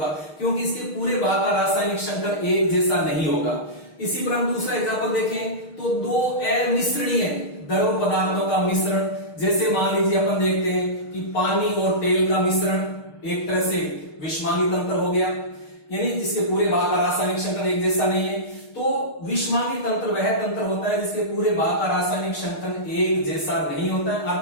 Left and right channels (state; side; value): late; right; 6.5 ms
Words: क्योंकि इसके पूरे भाग का रासायनिक संगठन एक जैसा नहीं होगा। इसी पर हम दूसरा एग्जाम्पल देखें तो दो अमिश्रणीय द्रव पदार्थों का मिश्रण, जैसे मान लीजिए अपन देखते हैं कि पानी और तेल का मिश्रण एक तरह से विषमांगी तंत्र हो गया, यानी जिसके पूरे भाग का रासायनिक संगठन एक जैसा नहीं है। तो विषमांगी तंत्र वह तंत्र होता है जिसके पूरे भाग का रासायनिक संगठन एक जैसा नहीं होता है,